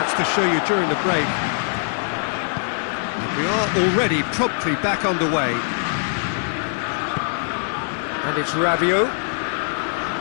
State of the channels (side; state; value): right; silent; digital silence